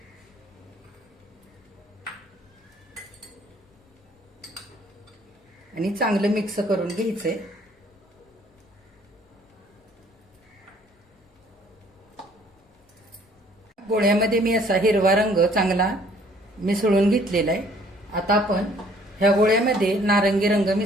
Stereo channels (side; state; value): both; normal; correlation 0.59